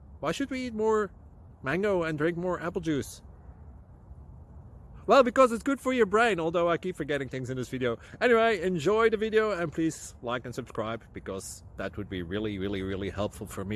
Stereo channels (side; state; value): both; identical; correlation 1.00